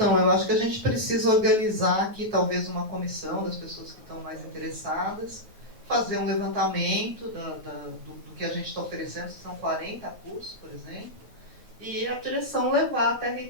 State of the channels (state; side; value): late; left; 9.3 ms